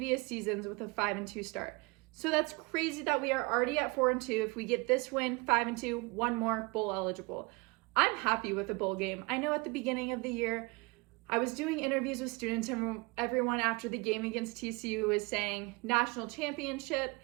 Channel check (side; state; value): left; quieter; 26.6 dB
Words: seasons with a 5-2 start. So that's crazy that we are already at 4-2. If we get this win, 5-2, 1 more, bowl eligible. I'm happy with the bowl game. I know at the beginning of the year, I was doing interviews with students, and everyone after the game against TCU was saying national championship.